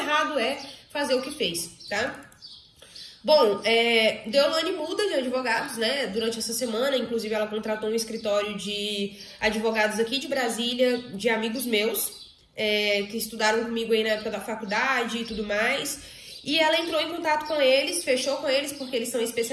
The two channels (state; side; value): identical; both; correlation 1.00